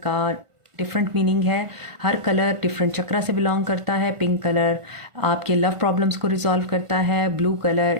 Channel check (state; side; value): late; left; 1.5 ms